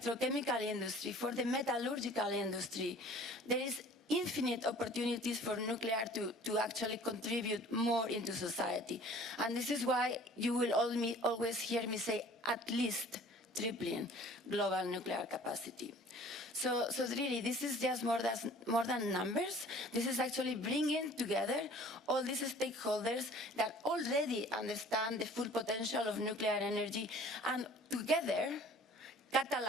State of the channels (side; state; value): both; normal; correlation 0.49